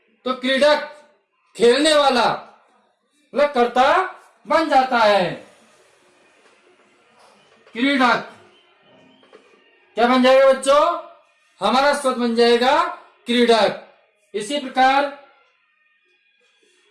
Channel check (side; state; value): both; identical; correlation 1.00